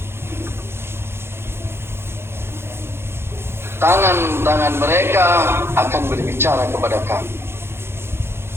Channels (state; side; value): late; left; 0.12 ms